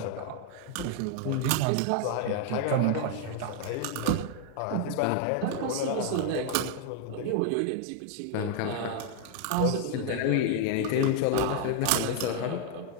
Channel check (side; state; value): both; different; correlation 0.00